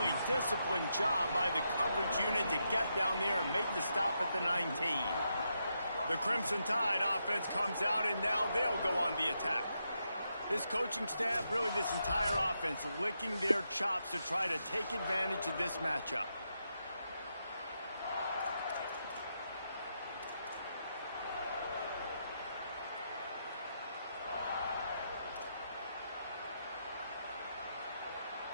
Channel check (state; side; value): inverted; both; correlation -0.82